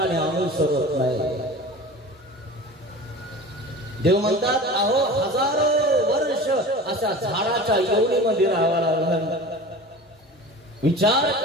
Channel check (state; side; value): normal; both; correlation 0.36